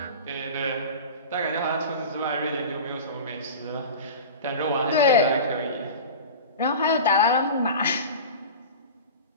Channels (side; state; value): both; inverted; correlation -0.32